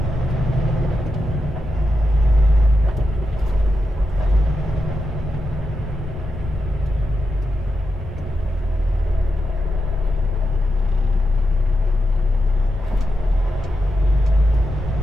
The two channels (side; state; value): both; normal; correlation 0.87